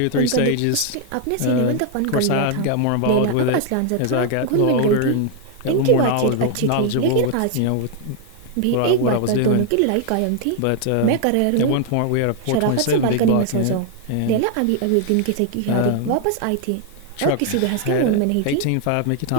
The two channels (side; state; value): both; different; correlation 0.00